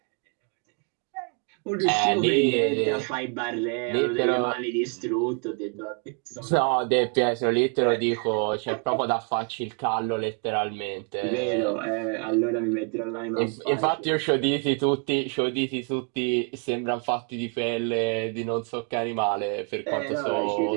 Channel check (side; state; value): left; quieter; 39.9 dB